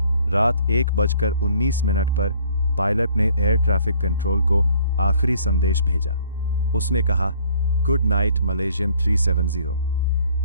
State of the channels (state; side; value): inverted; both; correlation -0.59